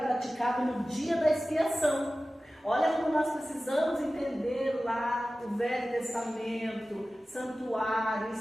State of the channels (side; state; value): both; normal; correlation 0.96